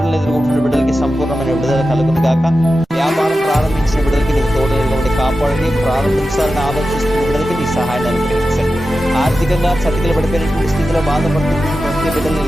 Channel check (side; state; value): both; normal; correlation 0.92